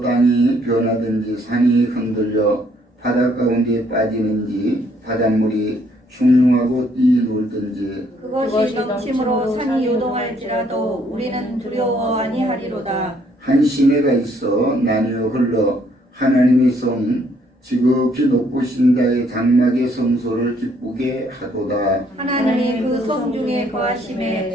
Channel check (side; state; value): both; normal; correlation 0.67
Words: 땅이 변하든지 산이 흔들려 바다 가운데 빠지는지 바닷물이 흉흉하고 뛰놀든지 그것이 넘침으로 산이 요동할지라도 우리는 두려워 아니하리로다. 한 시내가 있어 나뉘어 흘러 하나님의 성 지극히 높으신 자의 장막의 성소를 기쁘게 하도다. 하나님이 그 성 중에